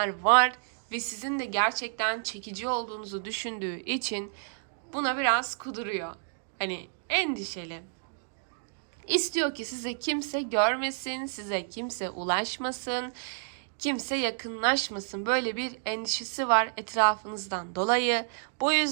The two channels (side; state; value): left; silent; digital silence